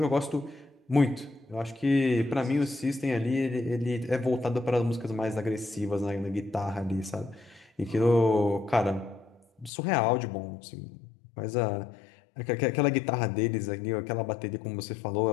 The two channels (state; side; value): drops out; right; at 9.7 s